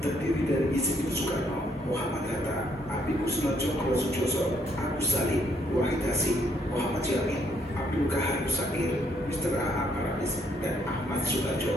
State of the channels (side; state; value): both; normal; correlation 0.71